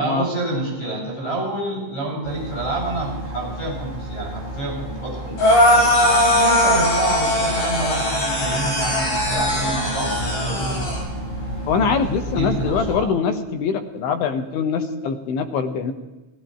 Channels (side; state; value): right; late; 15 ms